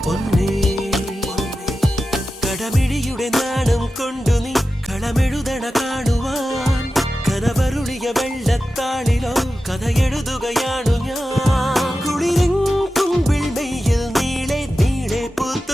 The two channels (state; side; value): normal; both; correlation 0.93